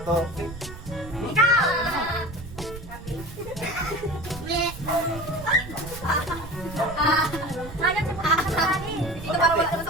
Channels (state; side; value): noise; right; rumble, 13 dB below the sound